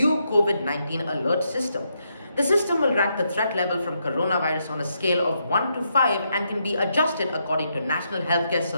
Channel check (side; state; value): both; inverted; correlation -0.80